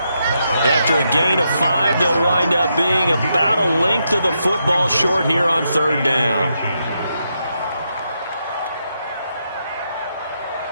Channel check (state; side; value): inverted; both; correlation -0.81